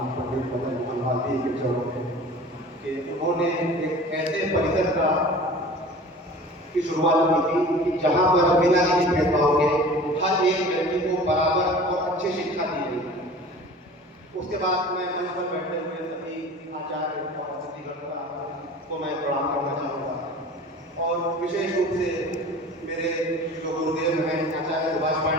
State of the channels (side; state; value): both; normal; correlation 0.41